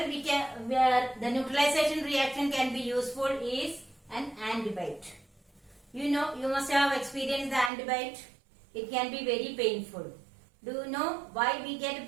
the neutralization reaction can be useful is an antibiotic. You know, you must have experienced the antibiotic. It can be very painful. Do you know why we get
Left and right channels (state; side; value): drops out; left; at 7.7 s